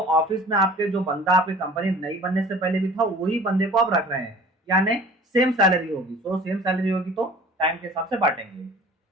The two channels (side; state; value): both; normal; correlation 0.45